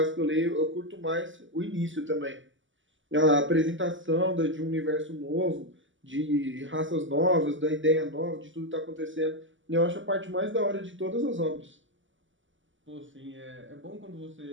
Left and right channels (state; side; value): late; left; 0.55 ms